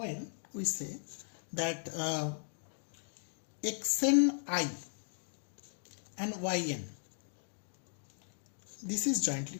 we say that XNI and YN, this is jointly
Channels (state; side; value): silent; right; digital silence